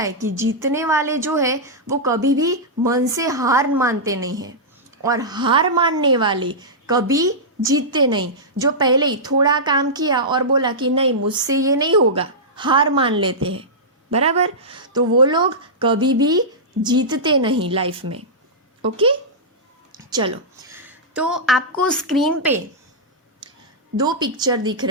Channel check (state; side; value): normal; both; correlation -0.12